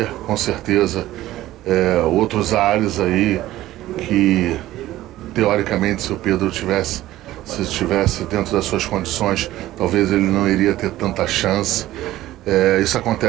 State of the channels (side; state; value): left; quieter; 15.2 dB